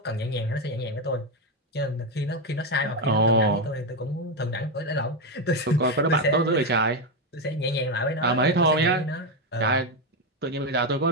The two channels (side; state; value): both; normal; correlation 0.08